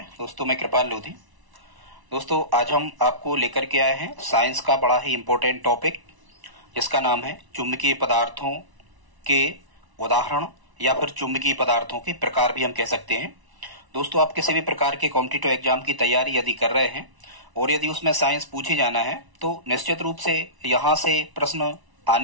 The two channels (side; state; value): left; late; 1.0 ms